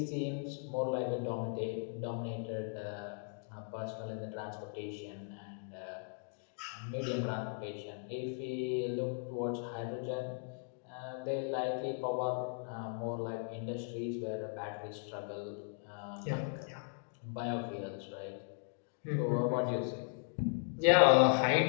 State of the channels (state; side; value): silent; right; 53 dB below the other